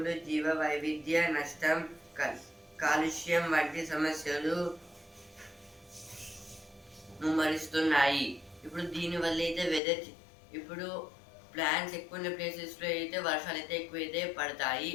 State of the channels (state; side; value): drops out; right; at 9.8 s